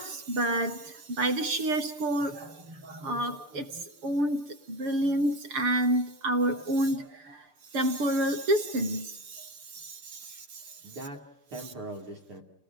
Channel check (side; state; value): left; late; 6.8 ms